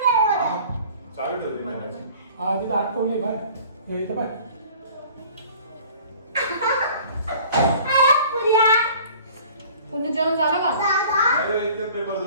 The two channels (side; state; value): both; inverted; correlation -0.49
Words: चालू ठेवते मॅडम. हा तिथं अटकवली बाय. हे इथं बाय. पुन्हा जेवण झालं का? एकदम पेपर